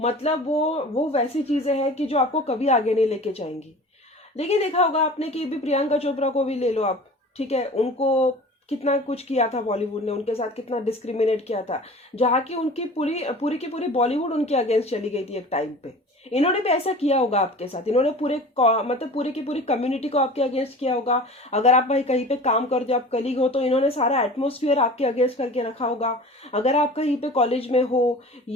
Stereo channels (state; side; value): normal; both; correlation 0.40